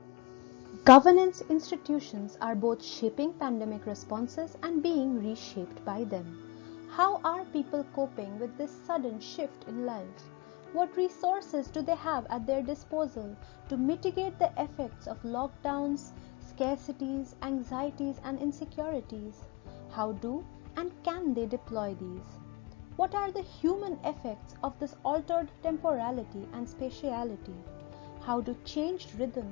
Governance institutions are both shaping pandemic responses and being reshaped by them. How are people coping with this sudden shift in life? What resources do they have at their disposal to mitigate the effects of lockdowns, scarcities, anxieties, and insecurities? How do and can they deploy these? What are the human effects of this altered temporality and spatiality? How do changed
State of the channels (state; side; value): quieter; right; 26.6 dB